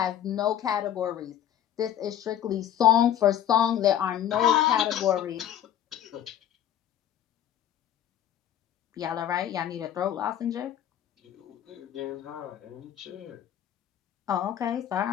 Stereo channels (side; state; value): right; quieter; 10.7 dB